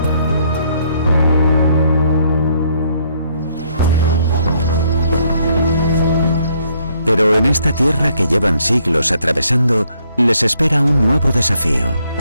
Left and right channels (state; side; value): inverted; both; correlation -0.69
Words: Pero en esta tierra que llevan siglos atravesando, les espera un nuevo desafío.